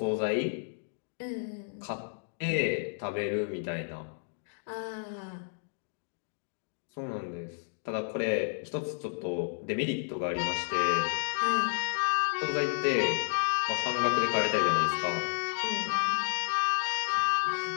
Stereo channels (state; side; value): silent; right; digital silence